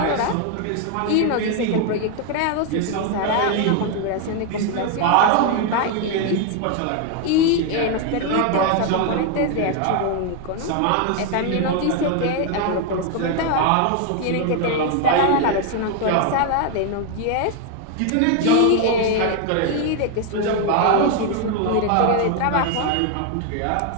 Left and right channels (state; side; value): different; both; correlation 0.01